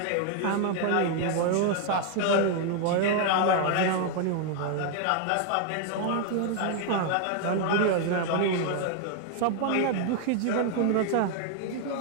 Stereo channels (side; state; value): both; different; correlation 0.00